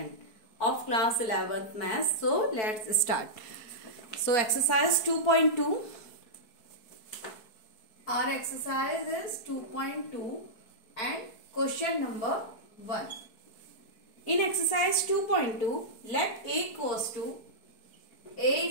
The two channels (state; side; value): late; right; 4.6 ms